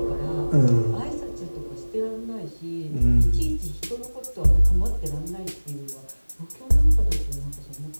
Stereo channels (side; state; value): both; inverted; correlation -1.00